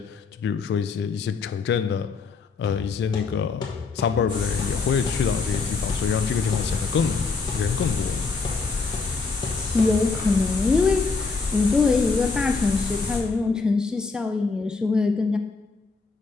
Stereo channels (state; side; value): quieter; right; 4.4 dB